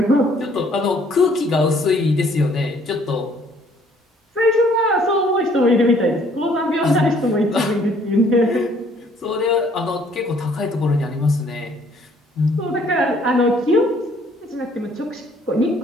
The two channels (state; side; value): normal; both; correlation 0.61